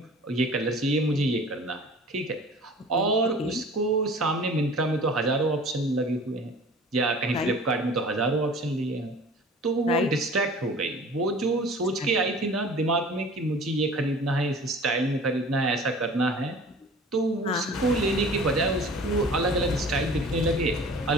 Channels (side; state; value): both; normal; correlation 0.44